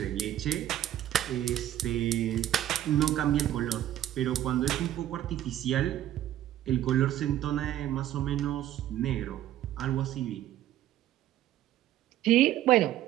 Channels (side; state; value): left; quieter; 12.4 dB